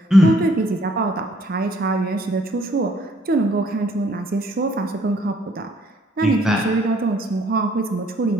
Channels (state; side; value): normal; both; correlation 0.64